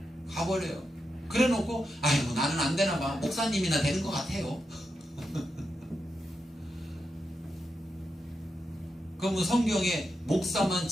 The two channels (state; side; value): normal; both; correlation 0.87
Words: 가버려요. 그래 놓고 아이고 나는 안 되나 봐. 목사님이나 되는 것 같아요. 그러면 성경에 목사만